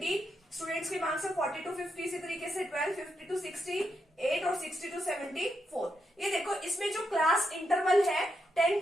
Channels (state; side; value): normal; both; correlation 0.83